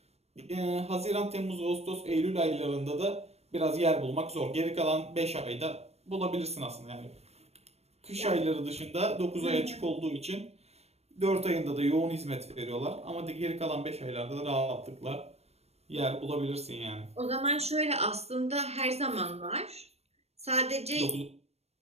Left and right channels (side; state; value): left; late; 0.31 ms